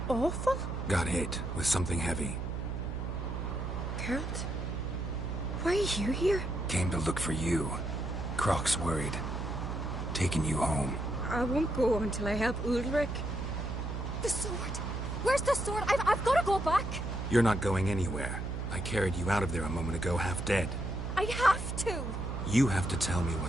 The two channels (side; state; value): right; noise; hum, 4 dB below the sound